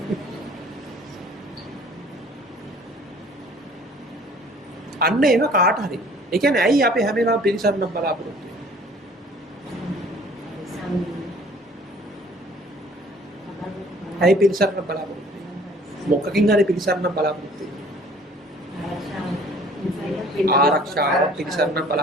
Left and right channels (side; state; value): both; normal; correlation 0.53